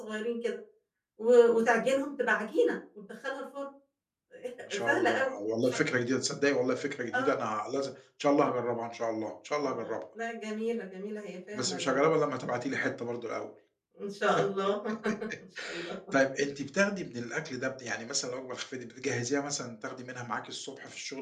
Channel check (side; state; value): both; identical; correlation 1.00